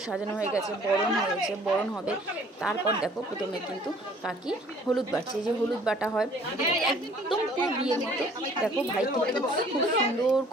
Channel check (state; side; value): normal; both; correlation 0.56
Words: সাজানো হয়ে গেছে, বরণ হয়েছে, বরণ হবে। তারপর দেখো প্রথমে কিন্তু কাকি হলুদ বাটছে, এই যে হলুদ বাটা হয় একদম পুরো বিয়ের মতো। দেখো ভাই কিন্তু খুব সুন্দর